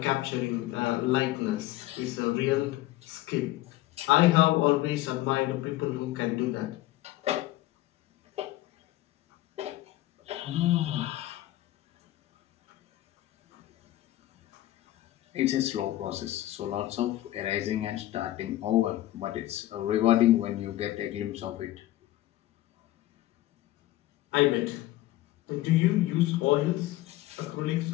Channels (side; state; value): right; quieter; 15.8 dB